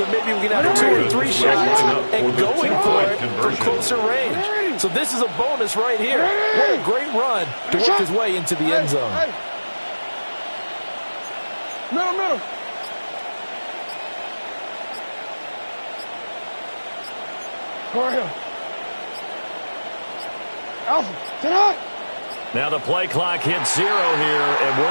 maybe we can have 2 or 3 shots and going for it from closer range. So this is a bonus right here. What a great run to work his way into the end zone. Middle. Go ahead. Alpha, sit up. Now the play clock hits 0 here, and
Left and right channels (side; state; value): both; inverted; correlation -1.00